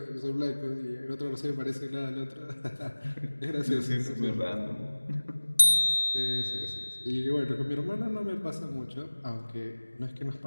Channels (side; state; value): both; inverted; correlation -1.00